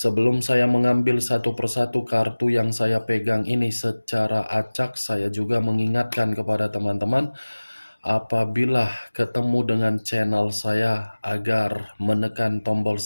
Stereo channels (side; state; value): both; inverted; correlation -1.00